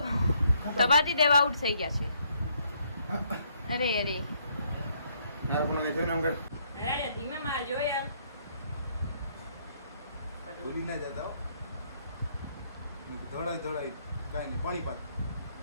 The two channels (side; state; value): both; inverted; correlation -0.70